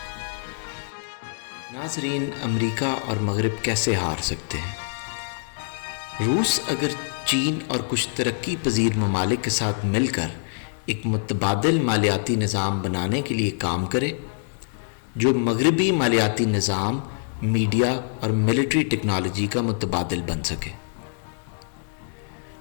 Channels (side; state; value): right; silent; 62 dB below the other